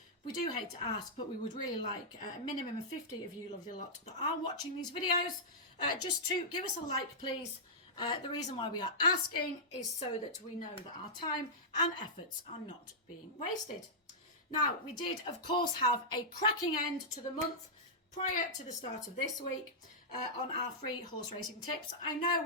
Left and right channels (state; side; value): normal; both; correlation -0.12